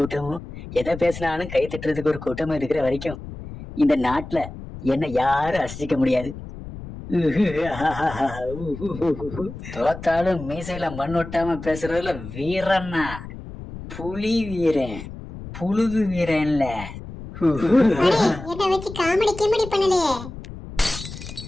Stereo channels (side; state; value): left; noise; rumble, 12 dB below the sound